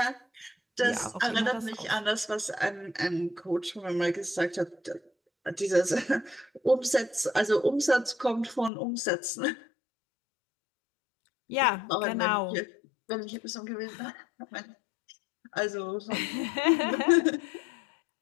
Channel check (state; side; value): drops out; right; at 8.7 s